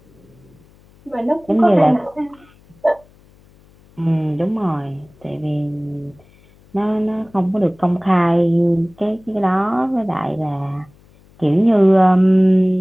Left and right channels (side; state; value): left; noise; hum, 29 dB below the sound